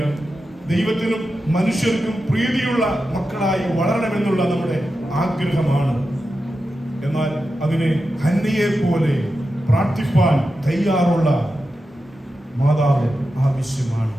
ദൈവത്തിനും മനുഷ്യർക്കും പ്രീതിയുള്ള മക്കളായി വളരണമെന്നുള്ള നമ്മുടെ ആഗ്രഹമാണ്. എന്നാൽ അതിനെ ഹന്നയെ പോലെ പ്രാർത്ഥിപ്പാൻ തയ്യാറുള്ള മാതാവ് ആവശ്യമാണ്.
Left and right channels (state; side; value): normal; both; correlation 0.90